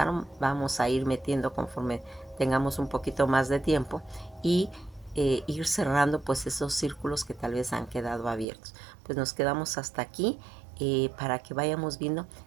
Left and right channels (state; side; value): drops out; left; at 8.5 s